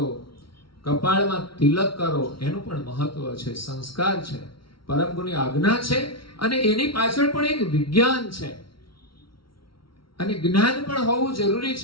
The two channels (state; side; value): late; right; 0.74 ms